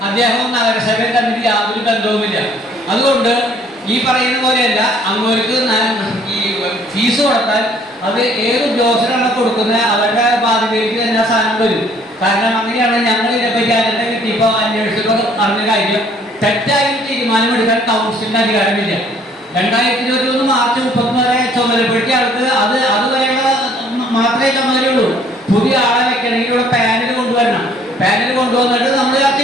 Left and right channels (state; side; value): normal; both; correlation 0.60